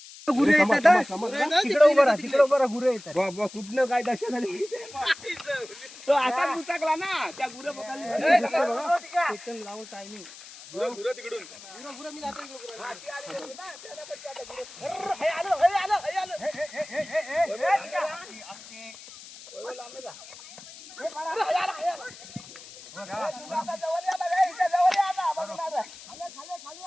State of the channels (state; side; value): noise; left; hiss, 17 dB below the sound